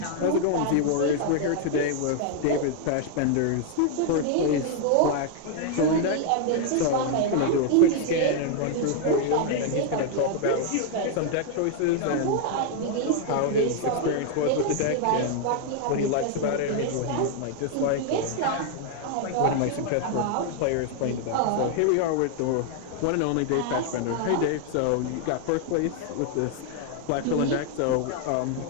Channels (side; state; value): both; different; correlation 0.00